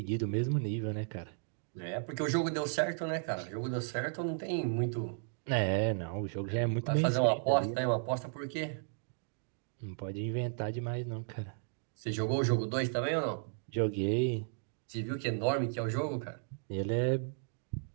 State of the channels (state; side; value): silent; left; digital silence